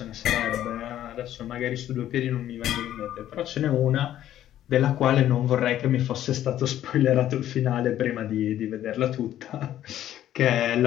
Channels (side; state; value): right; quieter; 12.1 dB